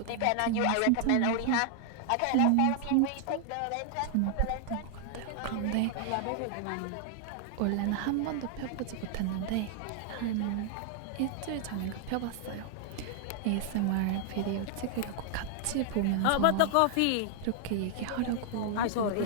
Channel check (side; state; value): both; different; correlation 0.00